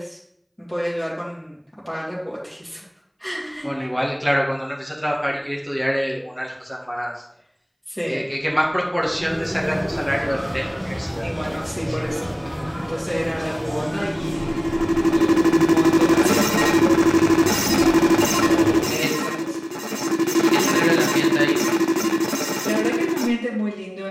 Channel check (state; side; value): identical; both; correlation 1.00